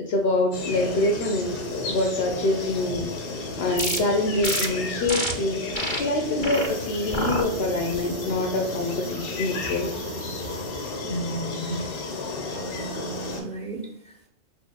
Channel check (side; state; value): right; late; 2.3 ms